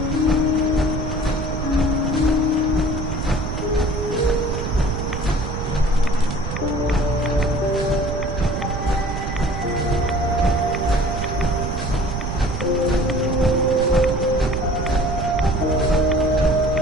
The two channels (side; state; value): right; noise; rumble, 4 dB below the sound